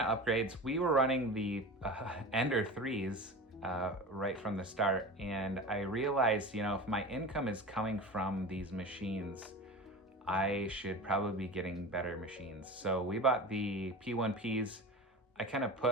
upgrades, we were running the Ender 3s right from the start, and I realized, if my income is coming from these machines, I should probably be getting better machines. So we bought the P1Ps. I kind of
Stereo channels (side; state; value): both; normal; correlation 0.31